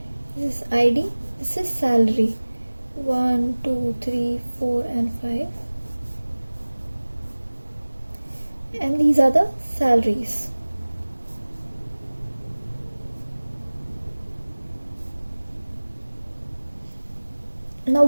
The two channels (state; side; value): inverted; both; correlation -1.00